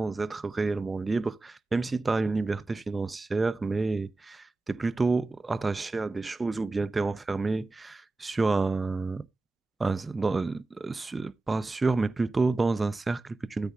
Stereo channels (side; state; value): left; quieter; 3.2 dB